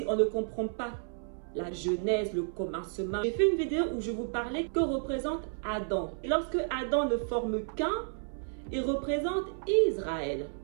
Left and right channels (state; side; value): silent; left; 57 dB below the other